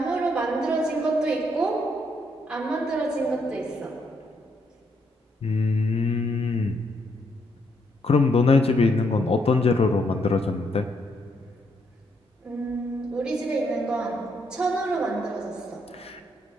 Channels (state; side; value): normal; both; correlation 0.75